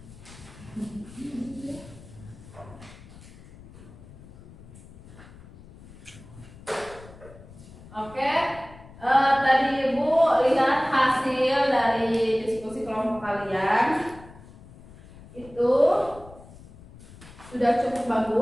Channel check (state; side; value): noise; left; rumble, 20 dB below the sound